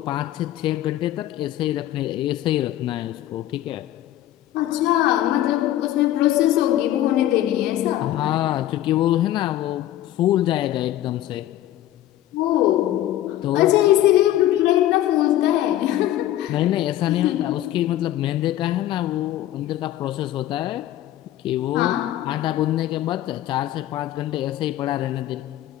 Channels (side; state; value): right; quieter; 13.4 dB